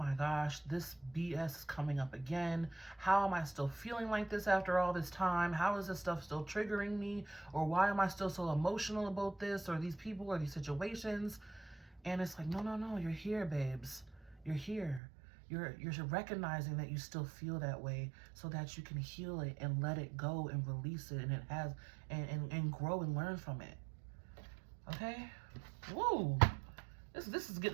gosh, this BS is coming up again. How am I still feeling like this after all this time? How is this stuff still triggering me? Or why am I still so emotional about this or these people or these situations? And it's like, no, you're here, babes. You're here. You're recognizing that you still feel that way so that you can heal it and let it go and release it, and it has and grow and learn from it. Okay? Woo! This is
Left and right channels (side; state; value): left; drops out; at 15.0 s